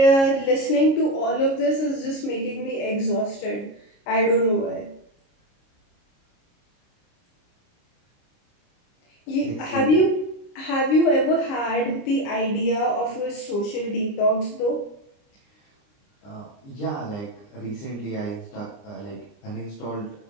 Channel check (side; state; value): right; late; 29 ms